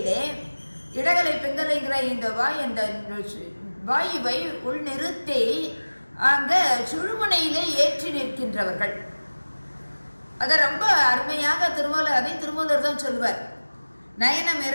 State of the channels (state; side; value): inverted; both; correlation -1.00